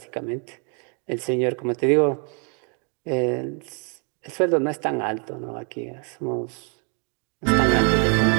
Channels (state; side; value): quieter; left; 38.3 dB